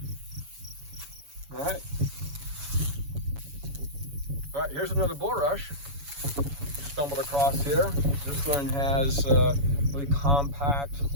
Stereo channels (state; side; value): late; left; 7.1 ms